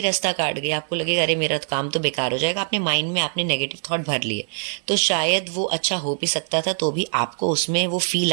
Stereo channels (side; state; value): left; silent; 64 dB below the other